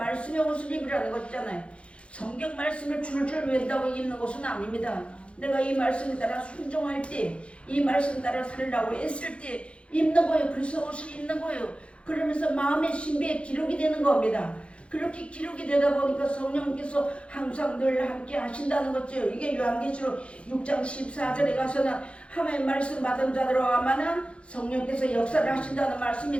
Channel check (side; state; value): right; late; 0.060 ms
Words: 옷을 입으라는 것이잖아요. 성경 말씀을 줄줄 외운다고 입는 것은 아닙니다. 내가 이 말씀에 따라 순종할 때, 이 말씀에 따라 살려고 애쓸 때 입는 거예요. 그래서 옷을 입는 거예요. 그러면서 마음의 신비에 기록이 되는 겁니다. 그렇게 기록이 되다 보니까 성령께서 항상 늘 함께 하신다는 거죠. 이게 요한계시록 6장 14절에 가서는 하나님의 말씀 받은 자들로만은 성령께서 역사를 하신다는 말씀이